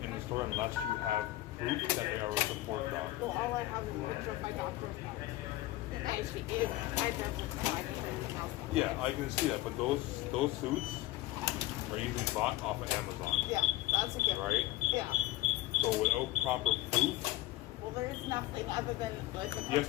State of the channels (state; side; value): quieter; right; 16.6 dB